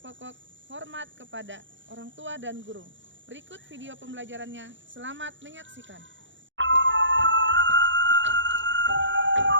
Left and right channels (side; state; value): left; late; 0.54 ms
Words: pokok hormat kepada orang tua dan guru. Berikut video pembelajarannya. Selamat menyaksikan.